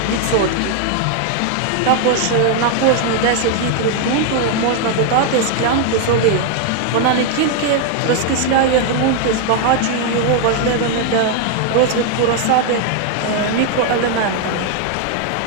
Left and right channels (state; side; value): different; both; correlation 0.00